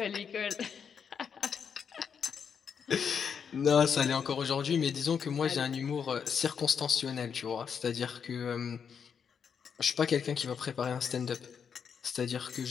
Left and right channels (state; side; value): quieter; right; 7.0 dB